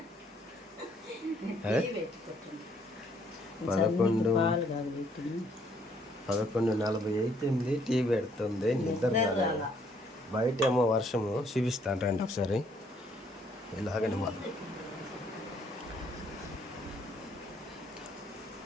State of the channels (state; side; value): normal; both; correlation 0.66